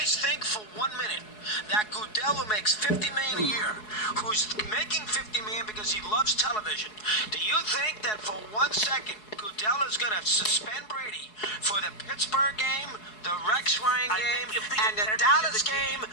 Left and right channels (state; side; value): late; right; 4.7 ms